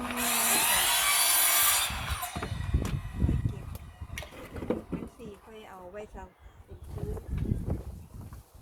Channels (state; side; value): identical; both; correlation 1.00